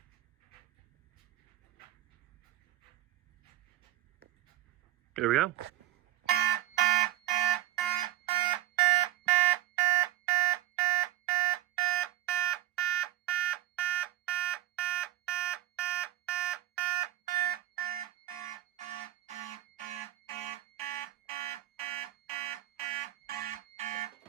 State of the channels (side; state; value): left; quieter; 14.9 dB